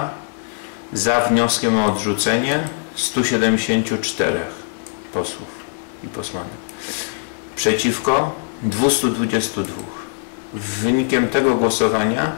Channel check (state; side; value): silent; right; 65 dB below the other